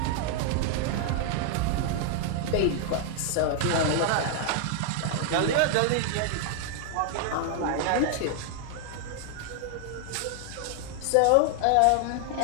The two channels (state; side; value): different; both; correlation 0.00